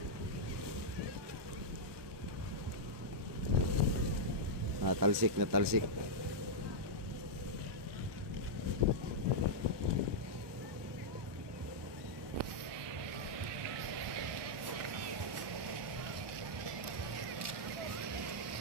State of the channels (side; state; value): left; late; 1.2 ms